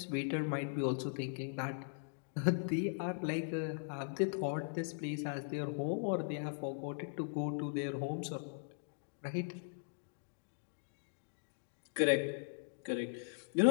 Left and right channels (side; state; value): right; silent; digital silence